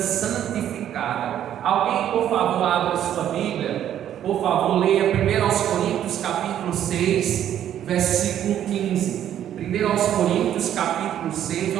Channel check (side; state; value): left; quieter; 10.7 dB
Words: Alguém, por favor, abra sua Bíblia por favor, leia 1 Coríntios capítulo 6, versículo 15. 1 Coríntios capítulo 6,